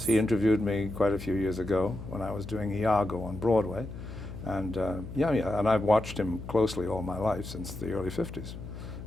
Yes, he interviewed me quite a few years ago when I was doing Iago on Broadway. And and I've watched him closely all my life since the early 50s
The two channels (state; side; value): noise; left; hum, 10 dB below the sound